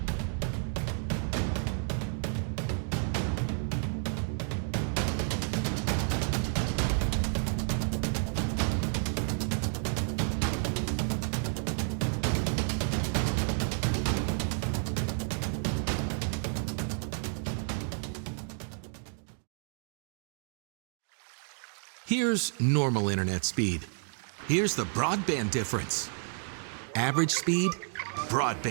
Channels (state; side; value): silent; left; 57 dB below the other